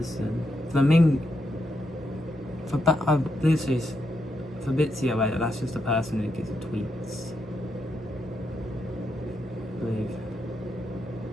I believe it's Fabrizio, wait, that's just the person who gives the tweets. I believe.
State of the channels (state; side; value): normal; both; correlation 0.82